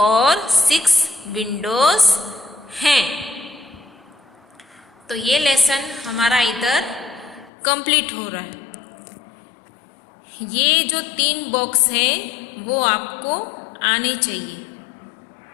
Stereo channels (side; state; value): right; drops out; at 7.5 s